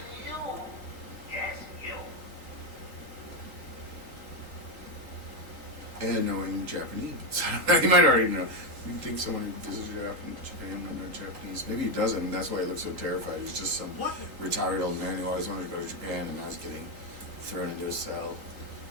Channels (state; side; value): late; left; 3.8 ms